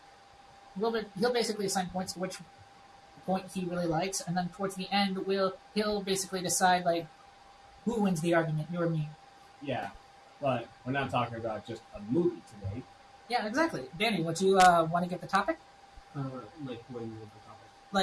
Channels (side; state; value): both; identical; correlation 1.00